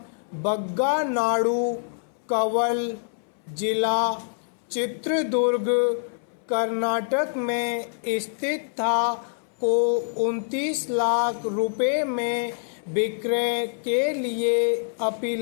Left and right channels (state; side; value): silent; right; 61 dB below the other